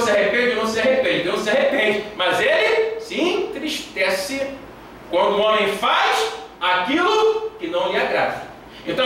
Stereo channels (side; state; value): both; identical; correlation 1.00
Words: se arrepende ou não se arrepende. Deus se arrepende, mas Ele se entristece quando o homem faz aquilo que não lhe agrada.